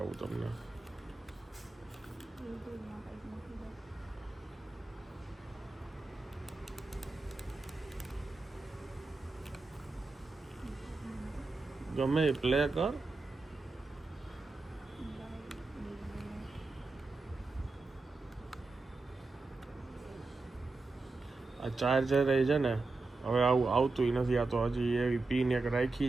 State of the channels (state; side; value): quieter; left; 3.6 dB